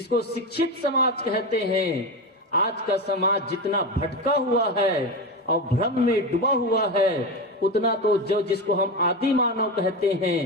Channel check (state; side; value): normal; both; correlation 0.19